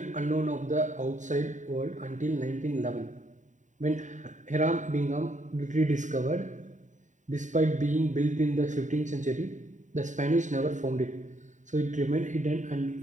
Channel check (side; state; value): left; late; 0.36 ms